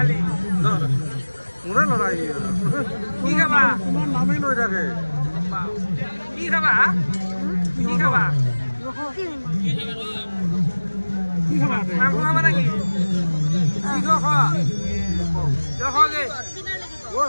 মোৰে লৰাই কি খাবা তোমাৰ নামেই লৈ থাকে কি খাবা কি খাবা মাংস খাবা নাকি কি খোৱা গে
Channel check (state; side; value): inverted; both; correlation -1.00